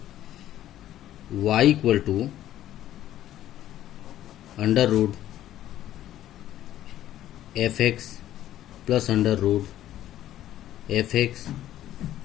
y equal to under root f x plus under root f x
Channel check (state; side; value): quieter; right; 12.8 dB